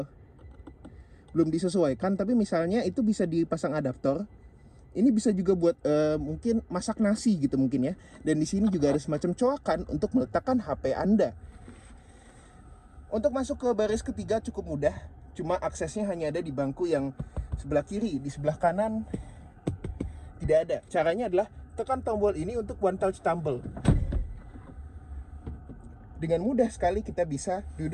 belum disesuaikan, tapi misalnya itu bisa dipasang adaptor. Ini bisa juga buat mungkin masak nasi gitu mungkin ya. Dan di sini juga ada semacam coakan untuk meletakkan HP Anda. Untuk masuk ke baris ketiga cukup mudah, cuma aksesnya hanya ada di bangku yang sebelah kiri. Di sebelah kanan tidak ada. Caranya adalah tekan tombol ini untuk one touch tumble. Dengan mudah sekali kita bisa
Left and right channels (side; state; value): both; identical; correlation 1.00